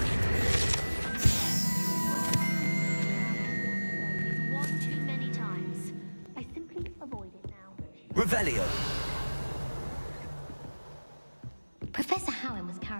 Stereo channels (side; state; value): both; inverted; correlation -1.00